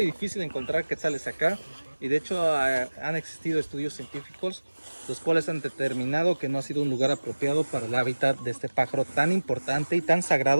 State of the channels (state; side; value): inverted; both; correlation -1.00